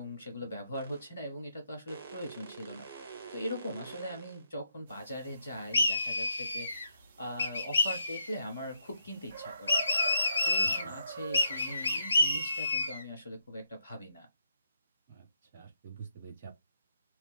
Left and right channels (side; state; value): both; inverted; correlation -0.78